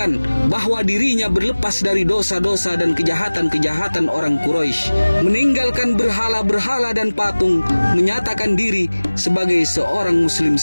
bahwa dirinya berlepas dari dosa-dosa dan kejahatan-kejahatan orang Quraisy, meninggalkan berhala-berhala dan patung, menyatakan diri sebagai seorang muslim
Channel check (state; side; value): inverted; both; correlation -1.00